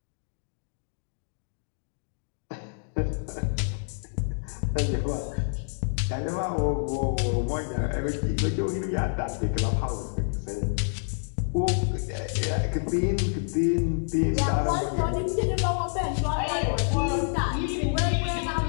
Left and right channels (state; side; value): silent; right; digital silence